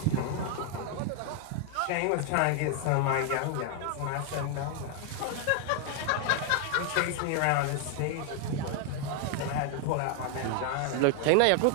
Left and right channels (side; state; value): both; different; correlation 0.00